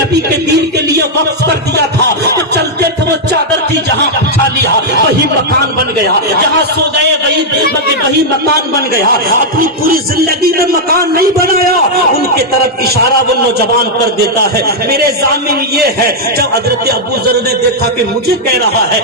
के दीन के लिए वक्फ कर दिया था। तो चलते थे वो चादर थी जहाँ बिछा लिया वही मकान बन गया, जहाँ सो गए वही मकान बन गया, अपनी पूरी जिंदगी में मकान नहीं बनाया। उनके तरफ इशारा वो नौजवान कर देता है। मेरे जामिन ये है जब हजरत अबू जर ने देखा कि मुझे कह रहा है,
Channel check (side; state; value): both; normal; correlation -0.03